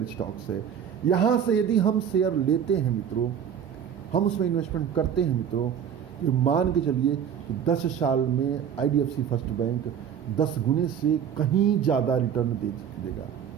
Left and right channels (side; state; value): left; quieter; 8.4 dB